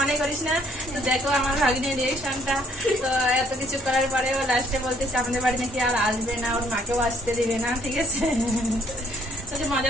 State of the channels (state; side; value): normal; both; correlation 0.64